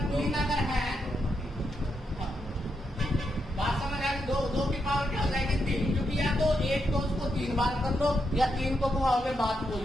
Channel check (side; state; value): both; normal; correlation 0.82